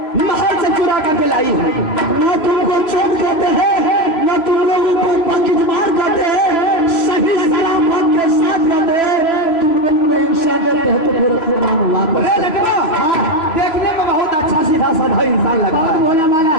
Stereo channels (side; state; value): right; late; 3.0 ms